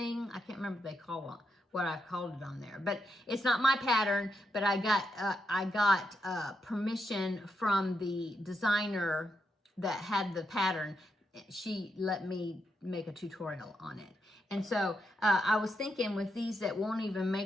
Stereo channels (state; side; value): normal; both; correlation 0.83